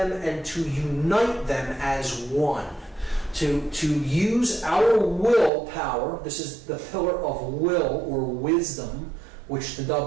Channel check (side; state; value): left; drops out; at 5.5 s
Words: and to unite them as one. To use our will power. This is the pillar of will or wisdom, which the